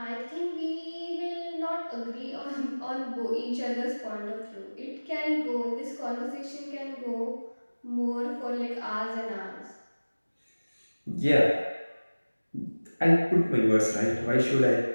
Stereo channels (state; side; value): inverted; both; correlation -1.00